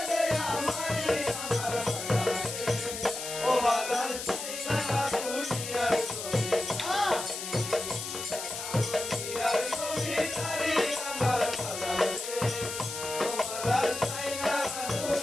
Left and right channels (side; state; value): left; noise; hiss, 6 dB below the sound